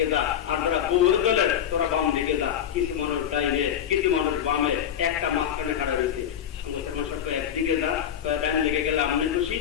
যা, আর যারা বউর দলের তোরা বাম দিকে যা। কিছু মানুষ ডাইনে, কিছু মানুষ বামে, একটা মাঝখানে খাড়া রয়েছে। একদিকে যা, ডাইন দিকে গেলে আমি খুশি,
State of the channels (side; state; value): right; quieter; 9.6 dB